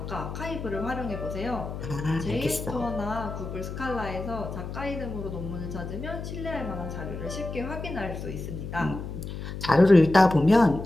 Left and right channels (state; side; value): noise; left; hum, 7 dB below the sound